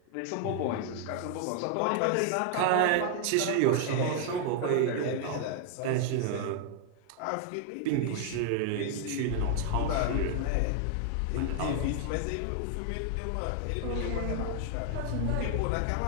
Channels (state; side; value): different; both; correlation 0.00